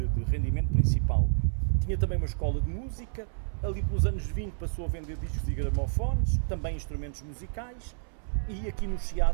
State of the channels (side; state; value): left; silent; 58 dB below the other